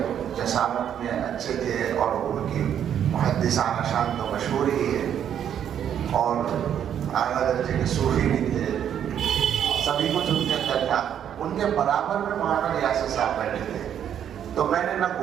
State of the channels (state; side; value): quieter; left; 9.4 dB